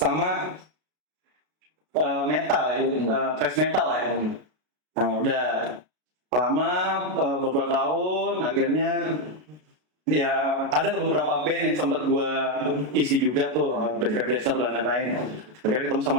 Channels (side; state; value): left; late; 33 ms